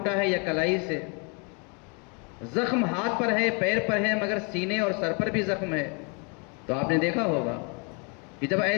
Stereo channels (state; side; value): quieter; right; 34.7 dB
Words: ہے یا کلائی سے، زخم ہاتھ پر ہے، پیر پر ہے، مگر سینے اور سر پر بھی زخم ہے، تو آپ نے دیکھا ہوگا کہ جب